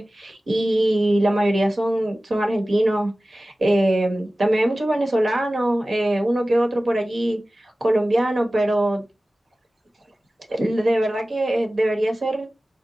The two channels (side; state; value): both; normal; correlation 0.96